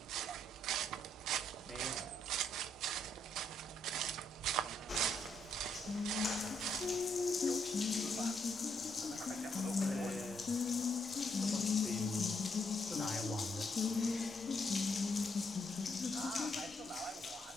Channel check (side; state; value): both; normal; correlation 0.74